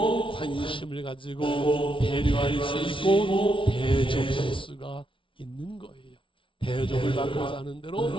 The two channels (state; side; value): late; right; 0.25 ms